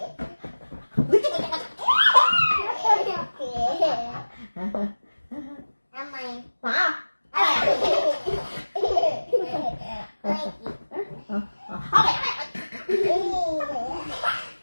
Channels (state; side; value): inverted; both; correlation -1.00